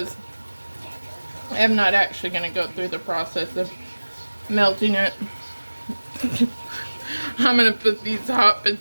I'm not actually going to go through the process of melting it. I'm going to put these hot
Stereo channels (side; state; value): both; inverted; correlation -1.00